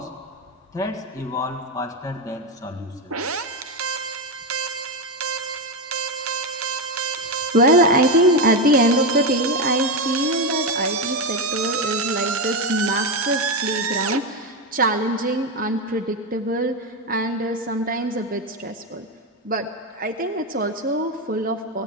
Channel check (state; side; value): normal; both; correlation 0.11